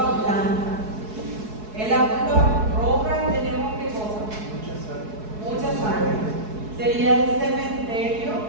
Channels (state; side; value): late; left; 4.7 ms